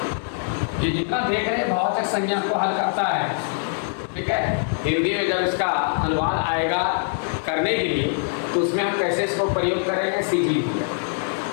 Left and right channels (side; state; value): right; silent; 63 dB below the other